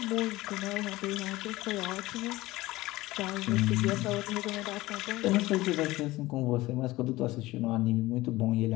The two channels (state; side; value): quieter; right; 18.7 dB